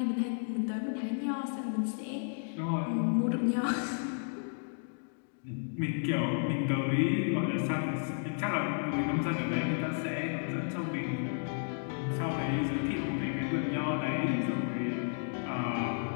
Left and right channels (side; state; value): right; silent; digital silence